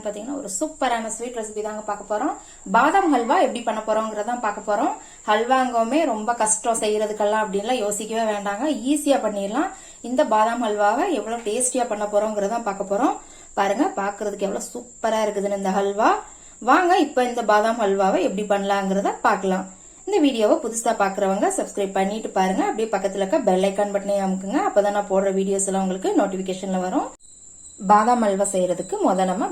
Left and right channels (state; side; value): identical; both; correlation 1.00